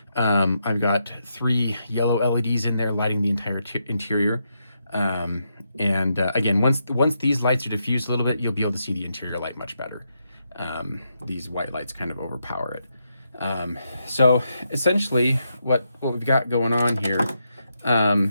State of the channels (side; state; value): both; inverted; correlation -0.82